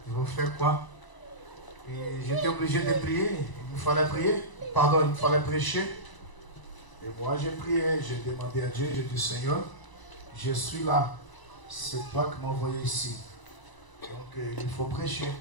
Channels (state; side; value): late; right; 1.0 ms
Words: je vais faire quoi? Et j'étais obligé de prier. Il me fallait prier. Pardon, il me fallait prêcher. Et moi, j'ai prié. J'ai demandé à Dieu. J'ai dit, Seigneur, je suis là. C'est toi qui m'as envoyé ici. Donc, il faut prêcher.